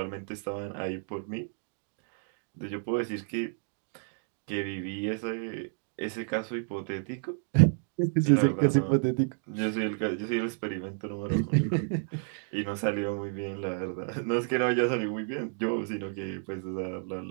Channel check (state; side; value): silent; left; 57 dB below the other